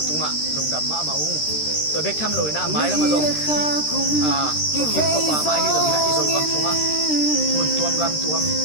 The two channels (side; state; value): right; late; 13 ms